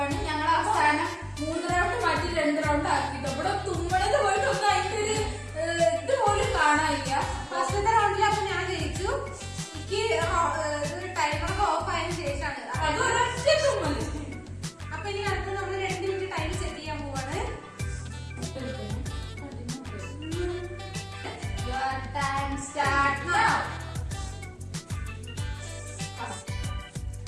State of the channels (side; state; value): both; identical; correlation 1.00